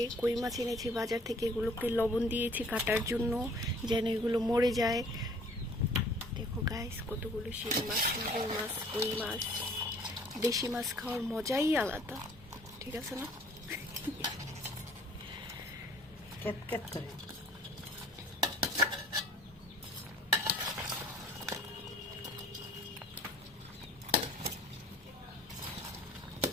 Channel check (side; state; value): both; normal; correlation 0.54